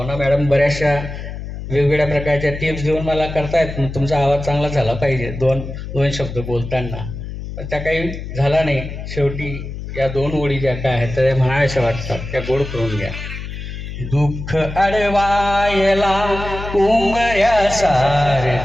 मॅडम बऱ्याचशा वेगवेगळ्या प्रकारच्या टिप्स देऊन मला करतायत, तुमचा आवाज चांगला झाला पाहिजे दोन शब्द बोलताना, पण त्या काही झाला नाही. शेवटी या 2 ओळी ज्या काय आहेत त्या म्हणाव्याशा वाटतात, त्या गोड करून घ्या. दुःख अडवायला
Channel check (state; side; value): noise; left; hum, 8 dB below the sound